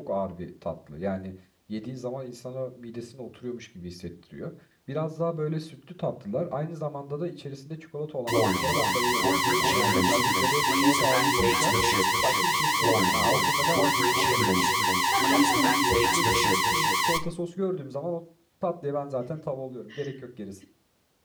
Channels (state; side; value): identical; both; correlation 1.00